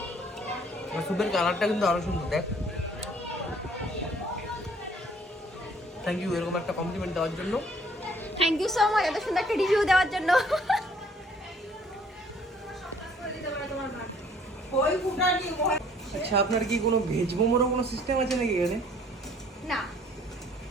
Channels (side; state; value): both; normal; correlation 0.58